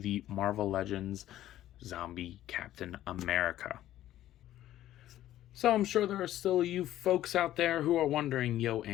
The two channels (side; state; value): right; quieter; 13.3 dB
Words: Marvel Legends Zombie Captain America. So I'm sure there are still you folks out there who are wondering, yo,